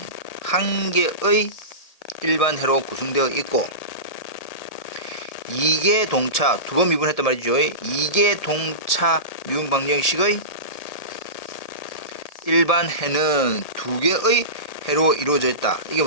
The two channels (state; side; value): late; right; 1.7 ms